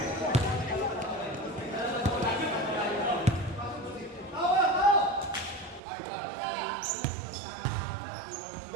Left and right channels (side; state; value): left; drops out; at 5.8 s